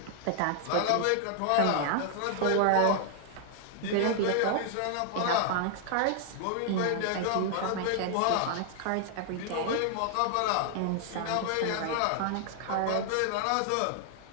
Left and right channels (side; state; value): both; different; correlation 0.00